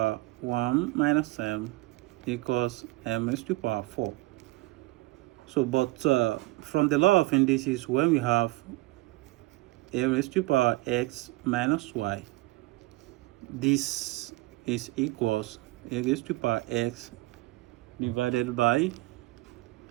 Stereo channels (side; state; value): left; quieter; 20.7 dB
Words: 1 minus m equals m raised to power 4. So, from the law of indices, when we have a raised to power x minus y, this is equals a raised to power x divided by